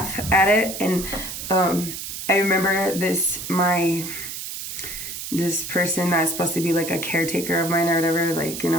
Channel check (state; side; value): noise; right; hiss, 7 dB below the sound